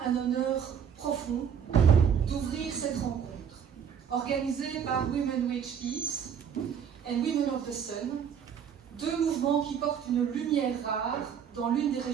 un honneur profond d'ouvrir cette rencontre, organisée par Women Who Peace and Women of the Sun, deux mouvements qui portent une lumière rare dans l'une des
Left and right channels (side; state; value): left; quieter; 7.8 dB